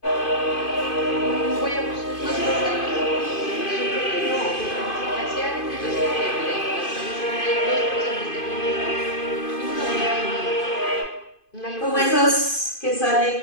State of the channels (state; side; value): late; right; 2.5 ms